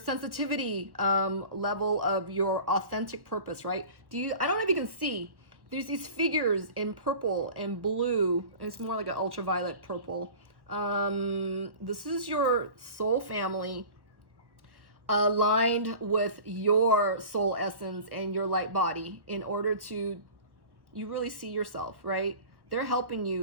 level of your authentic purpose, right? I don't know if you can see, there's these figures in purple and blue, and it's more like an ultraviolet purple. This is your soul family aligned with your soul essence and your light body in order to, you really see yourself, right? They're helping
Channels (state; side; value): late; left; 1.1 ms